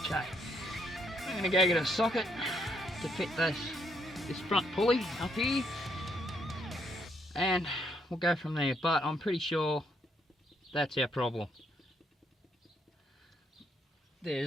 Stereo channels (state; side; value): normal; both; correlation 0.73